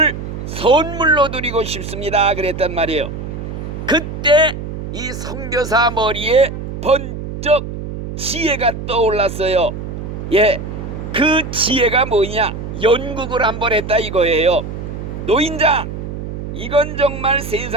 선물로 드리고 싶습니다. 그랬단 말이에요. 그때 이 선교사 머리에 번쩍 지혜가 떠올랐어요. 그 지혜가 뭐냐? 연극을 한번 했다 이거예요. 노인장, 이건 정말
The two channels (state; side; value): noise; right; hum, 7 dB below the sound